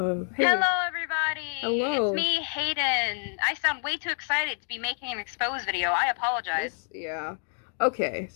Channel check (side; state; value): right; silent; 59 dB below the other